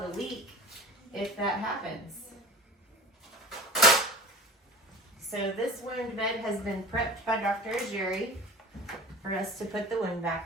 a leak if that happens. So this wound bed has been prepped by Dr. Jacki for us to put the WoundVac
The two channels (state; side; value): normal; both; correlation 0.36